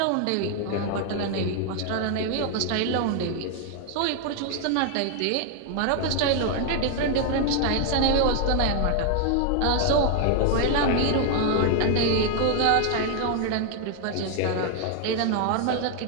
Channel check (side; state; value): both; different; correlation 0.00